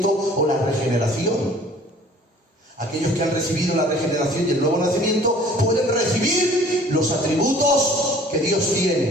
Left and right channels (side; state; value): both; normal; correlation 0.51